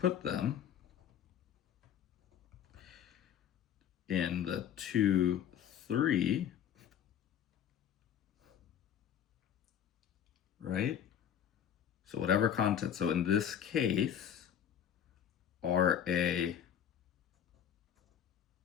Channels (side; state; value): right; quieter; 9.4 dB